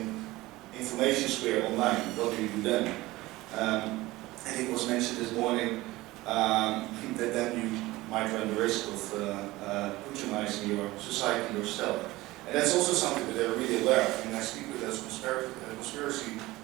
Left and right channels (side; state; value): left; quieter; 19.0 dB